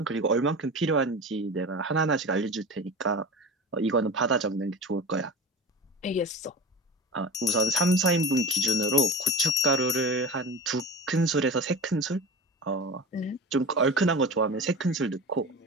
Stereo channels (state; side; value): normal; both; correlation 0.30